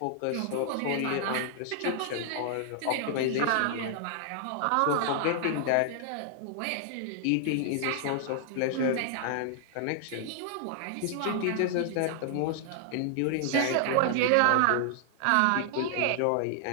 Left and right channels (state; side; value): different; both; correlation 0.00